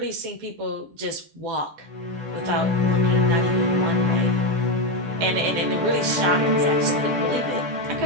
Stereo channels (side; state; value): left; late; 14 ms